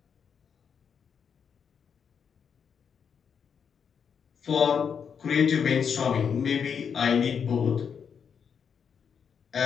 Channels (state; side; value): quieter; right; 7.0 dB